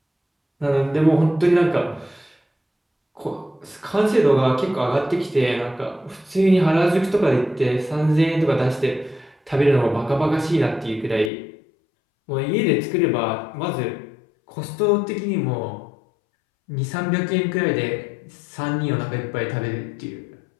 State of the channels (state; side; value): drops out; right; at 11.3 s